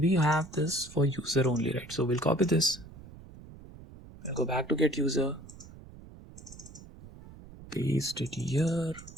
have this for user only, right? So we'll copy this, we'll go back to get user, paste it here.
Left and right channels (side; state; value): right; noise; rumble, 18 dB below the sound